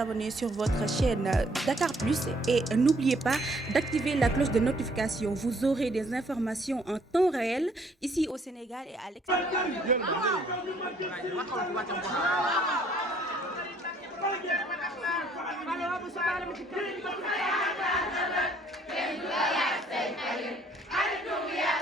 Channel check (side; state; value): both; normal; correlation 0.62